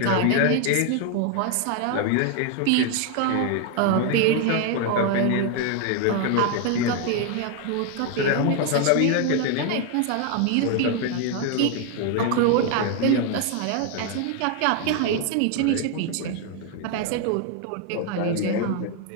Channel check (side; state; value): both; different; correlation 0.01